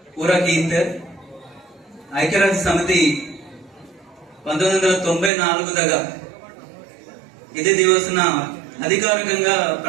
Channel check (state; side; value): drops out; left; at 5.3 s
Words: ಊರಕೀಂತ ఐక్యరాజ్య సమితి 1994 ఇది దివసన అధికారికంగా